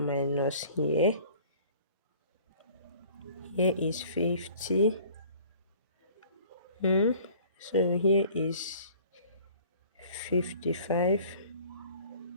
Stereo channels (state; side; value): inverted; both; correlation -0.51